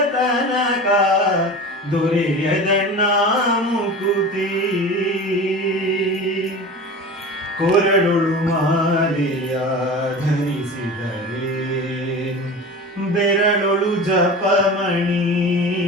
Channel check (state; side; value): normal; both; correlation 0.33